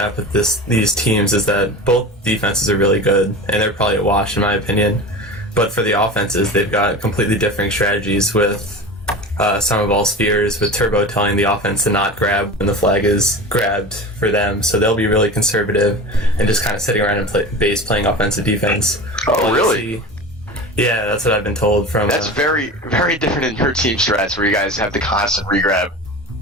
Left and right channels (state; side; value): normal; both; correlation 0.31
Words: with these teams is that both defenses are really good, and they're probably a wash in my opinion. But for the offenses, they've got completely different strategies with Superball Spheres, with Turbo telling the offense to not grab when the flag is grabbed for them. So they'll be really conservative and just kind of sitting around in base playing offensive defense. Oh, really? Yeah, that's what I've been told from... That's very, very different in your team strats where you guys have the constant regrab.